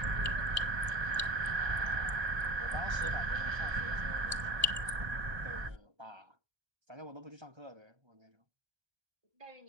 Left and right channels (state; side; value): late; left; 1.2 ms